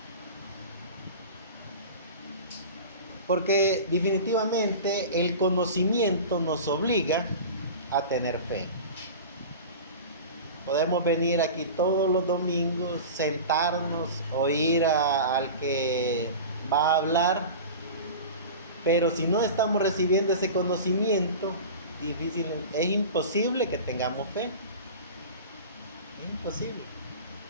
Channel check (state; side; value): inverted; both; correlation -0.33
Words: Porque definitivamente el conocimiento nos obliga a tener fe. Podemos venir aquí todos los domingos, sentarnos, oír al que va a hablar, pero si no estamos recibiendo ese conocimiento, es imposible que tengamos fe. Es imposible.